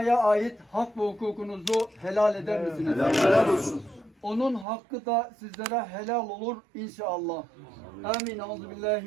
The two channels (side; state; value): left; drops out; at 4.7 s